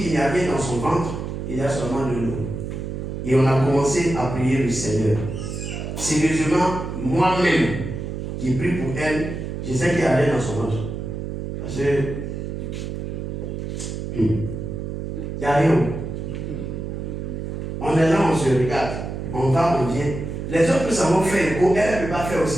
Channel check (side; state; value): right; noise; hum, 6 dB below the sound